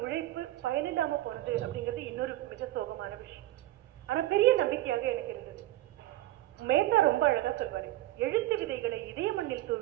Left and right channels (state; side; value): quieter; left; 15.6 dB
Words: உழைப்பு பயனில்லாம போனது அப்படிங்கிறது இன்னொரு மிக சோகமான விஷயம். ஆனா பெரிய நம்பிக்கையாக எனக்கு இருந்தது. மேத்தா ரொம்ப அழகா சொல்வாரு, எழுத்து விதைகளை இதய மண்ணில்